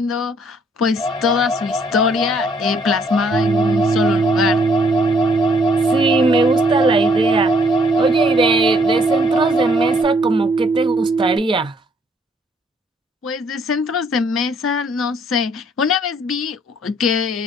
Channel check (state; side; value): normal; both; correlation 0.66